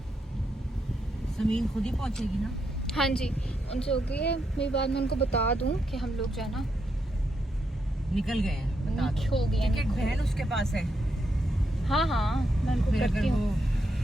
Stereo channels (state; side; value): normal; both; correlation 0.81